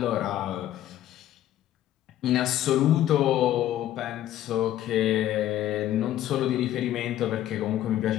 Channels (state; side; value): quieter; right; 12.7 dB